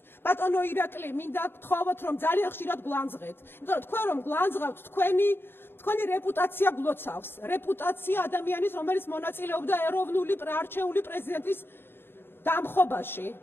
ბატონო ირაკლი, მინდა გთხოვოთ, რომ ძალიან ხშირად გვანძღეთ. იმიტომ რომ თქვენ რომ გვანძღავთ, თქვენი რეპუტაცია გლოცავს. რეპუტაცია ადამიანის, რომელიც მონაწილეობდა ეროვნული არჩეული პრეზიდენტის დამხობაში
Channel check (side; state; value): right; late; 0.11 ms